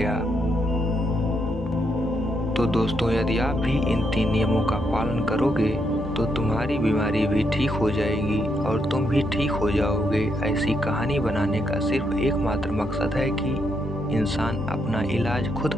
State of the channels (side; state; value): both; normal; correlation 0.79